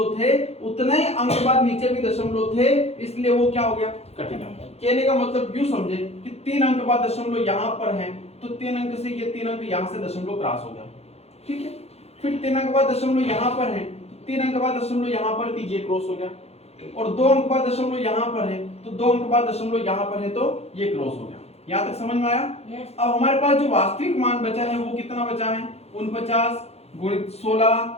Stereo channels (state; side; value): late; right; 0.30 ms